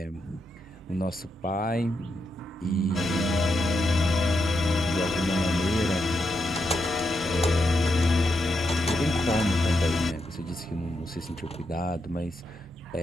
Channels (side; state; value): both; normal; correlation 0.83